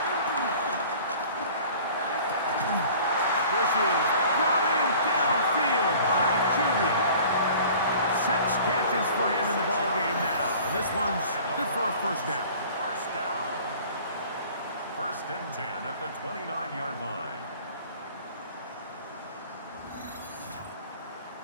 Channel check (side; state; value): both; inverted; correlation -0.47